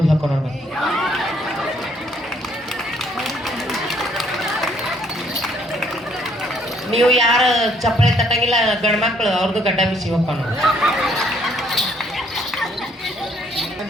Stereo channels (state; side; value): normal; both; correlation 0.66